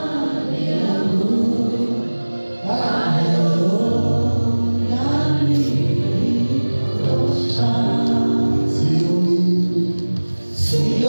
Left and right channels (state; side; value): inverted; both; correlation -1.00